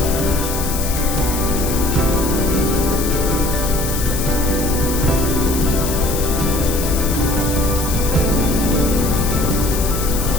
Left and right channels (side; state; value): left; noise; hiss, 6 dB below the sound